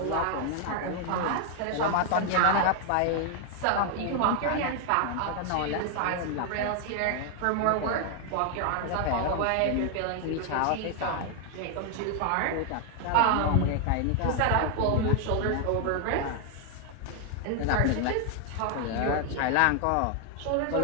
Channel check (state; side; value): different; both; correlation 0.00